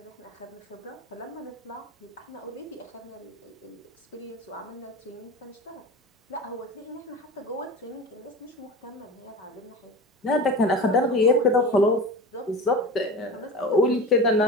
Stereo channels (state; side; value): normal; both; correlation 0.31